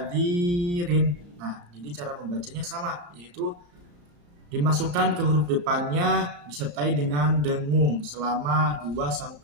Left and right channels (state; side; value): late; left; 34 ms